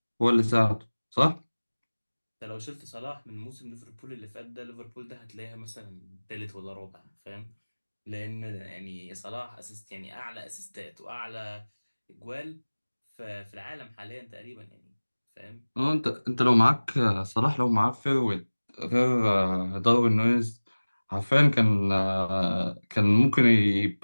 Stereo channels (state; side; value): inverted; both; correlation -1.00